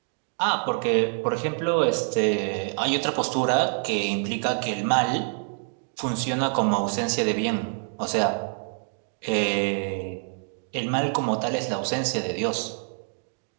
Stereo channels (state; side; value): silent; left; 57 dB below the other